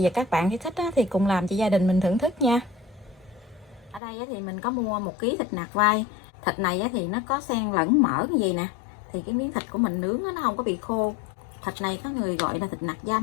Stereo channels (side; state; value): right; drops out; at 4.0 s